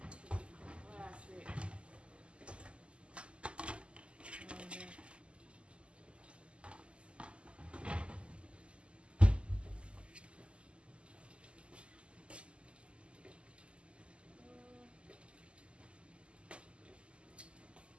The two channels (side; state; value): left; late; 0.053 ms